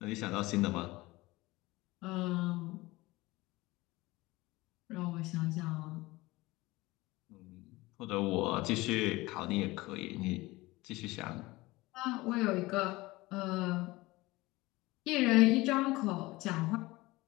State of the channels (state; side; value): quieter; right; 20.6 dB